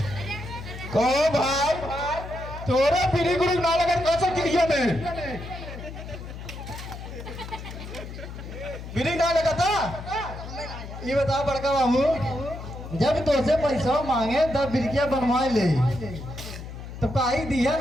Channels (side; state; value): left; noise; hum, 11 dB below the sound